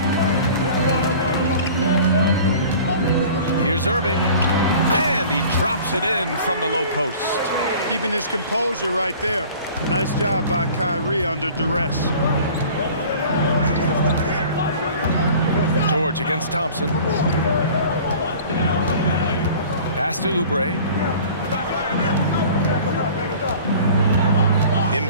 Here's Irving. And he drops it in from the low post. Keeping his composure right there. Nice job by Kyrie under duress. George against Thompson. Pass to Oubre.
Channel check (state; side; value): inverted; both; correlation -0.45